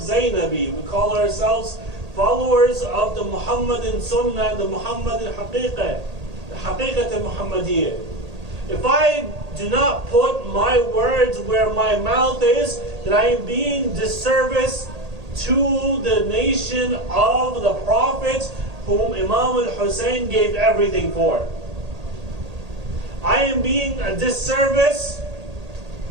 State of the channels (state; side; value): late; left; 1.8 ms